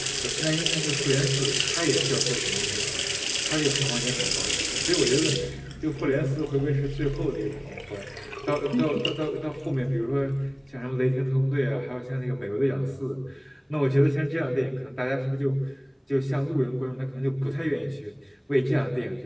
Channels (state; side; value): identical; both; correlation 1.00